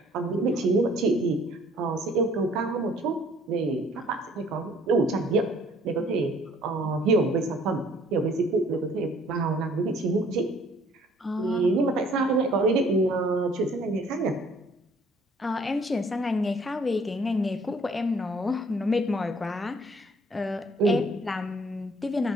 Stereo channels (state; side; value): normal; both; correlation 0.58